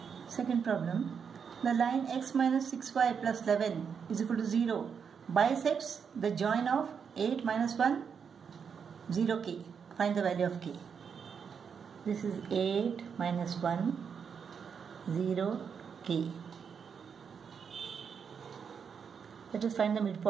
Second problem. The line x minus 6y plus 11 is equal to 0 bisects the join of 8 minus 1, 0k. Find the value of k. This is 8 minus 1, 0k. Let us find the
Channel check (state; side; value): quieter; left; 6.7 dB